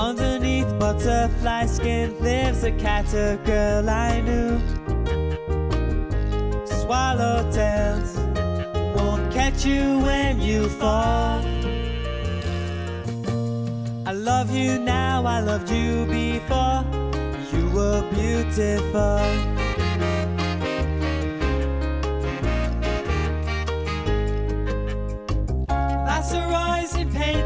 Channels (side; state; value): both; identical; correlation 1.00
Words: butterfly skin lives a catter girl I knew. Swallowtails won't catch you when you fall. I love you now, I loved you before. You were beautiful. Viceroys and